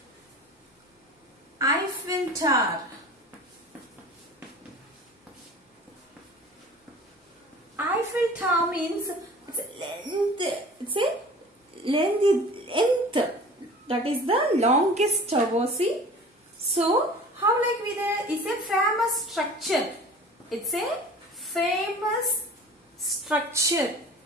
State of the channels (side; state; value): both; normal; correlation 0.41